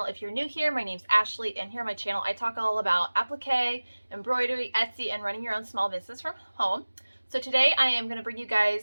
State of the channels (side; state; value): both; inverted; correlation -1.00